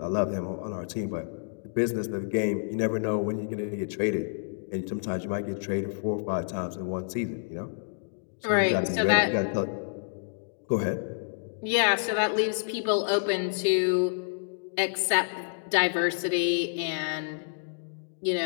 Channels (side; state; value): right; silent; digital silence